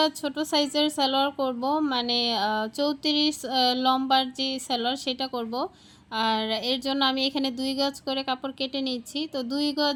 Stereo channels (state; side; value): identical; both; correlation 1.00